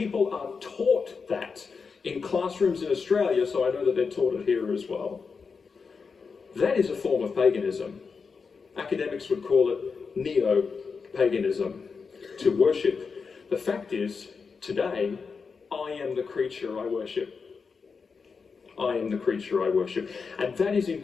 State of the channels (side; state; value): right; quieter; 5.2 dB